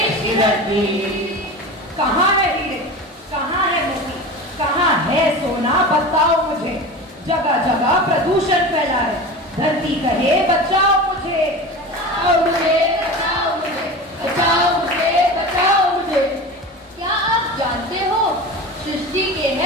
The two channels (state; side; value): normal; both; correlation 0.30